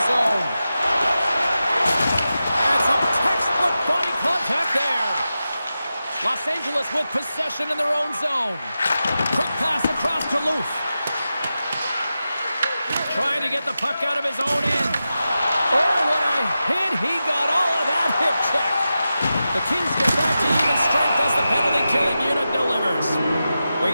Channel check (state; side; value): inverted; both; correlation -0.92